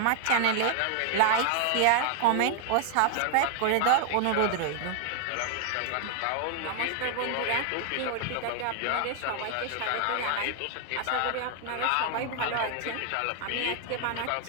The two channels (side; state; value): both; different; correlation 0.00